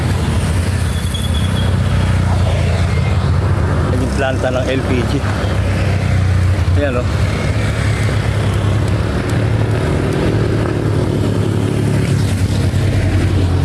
Planta ng LPG. Ayan o.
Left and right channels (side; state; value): both; identical; correlation 1.00